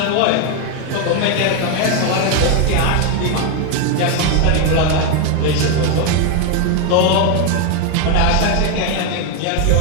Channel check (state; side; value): different; both; correlation 0.01